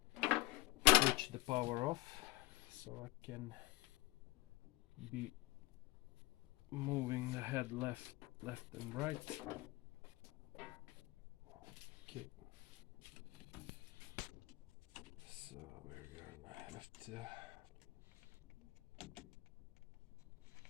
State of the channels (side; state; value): right; quieter; 19.7 dB